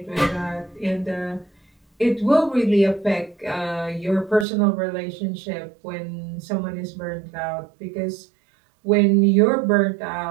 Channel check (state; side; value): drops out; left; at 4.5 s